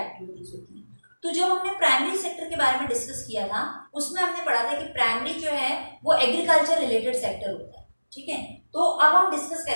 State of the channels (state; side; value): inverted; both; correlation -1.00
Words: होती हैं। तो जब हमने प्राइमरी सेक्टर के बारे में डिस्कस किया था उसमें हमने पढ़ा था कि प्राइमरी जो है वो एग्रीकल्चर रिलेटेड सेक्टर होता है, ठीक है। तो अब हम डिस्कस